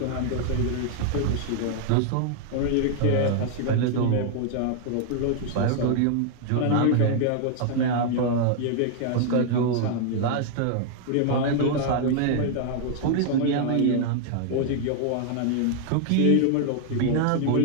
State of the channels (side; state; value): both; different; correlation 0.00